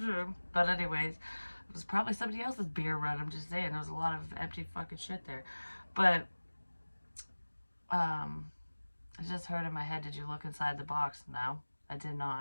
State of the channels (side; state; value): both; inverted; correlation -1.00